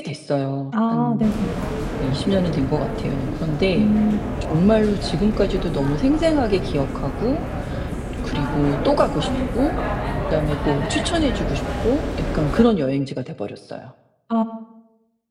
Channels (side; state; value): both; identical; correlation 1.00